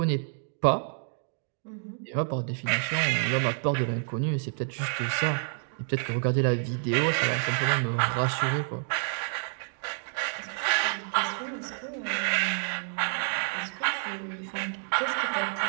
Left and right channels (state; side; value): silent; left; 59 dB below the other